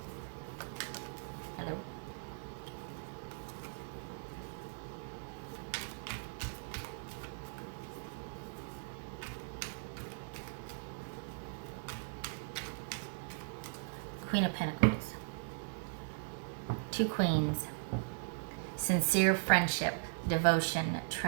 Hello. Queen of Pentacles. Two queens. Sincere friendship, devotion,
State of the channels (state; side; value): silent; left; digital silence